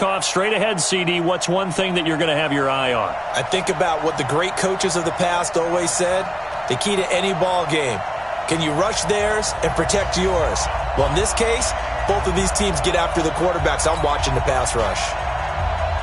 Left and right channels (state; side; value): identical; both; correlation 1.00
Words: straight ahead, CD. What's one thing that you're going to have your eye on? I think about what the great coaches of the past always said. The key to any ball game. Can you rush theirs and protect yours? Well, in this case, both of these teams get after the quarterbacks. I'm watching the pass rush.